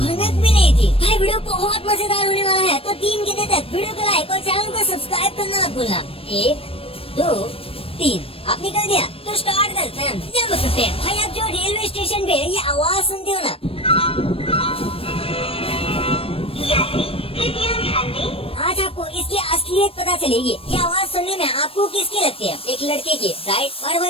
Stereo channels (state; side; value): late; right; 0.28 ms